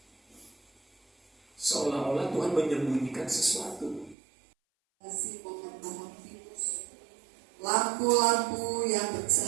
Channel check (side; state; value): left; drops out; at 4.2 s